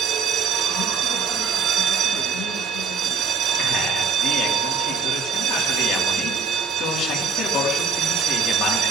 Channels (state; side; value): quieter; left; 5.0 dB